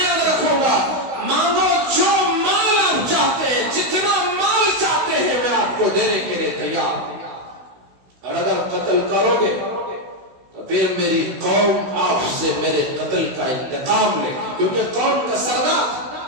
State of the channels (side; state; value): left; late; 16 ms